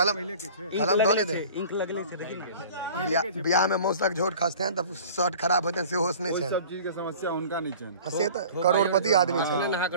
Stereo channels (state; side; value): inverted; both; correlation -0.44